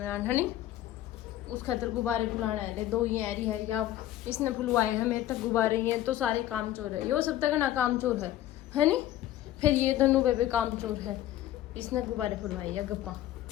है नहीं, उस खातर गुब्बारे फुलाना है। 2 ही ऐरी है या इसने फुलवाए हैं मेरे तक गुब्बारे हैं तो सारे काम चोर है। यो सब तक ना काम चोर है नहीं। फिर ये दोनों बेबे काम चोर है, इसने गुब्बारे फुलवाए है। गप्पा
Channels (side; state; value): right; quieter; 13.5 dB